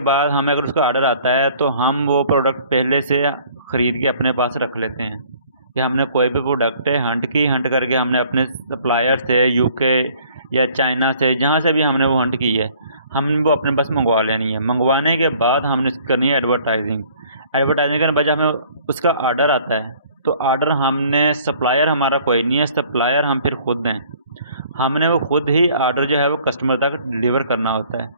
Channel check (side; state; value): both; inverted; correlation -0.56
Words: बाद हमें अगर उसका ऑर्डर आता है तो हम वो प्रोडक्ट पहले से ख़रीद के अपने पास रख लेते हैं कि हमने कोई भी प्रोडक्ट है हंट करके हमने अपने सप्लायर से यूके या चाइना से जहाँ से भी हमने वो हंट की है हमने वो अपने पास मंगवा लेनी है। मंगवाने के बाद हमने करनी है एडवर्टाइजिंग। एडवर्टाइजिंग करने के बाद जब हमें उसका ऑर्डर आता है तो ऑर्डर हमने सप्लायर हमारा कोई नहीं है, सप्लायर हम फिर खुद हैं। हमने वो खुद ही ऑर्डर जो है वो कस्टमर तक डिलीवर करना होता है।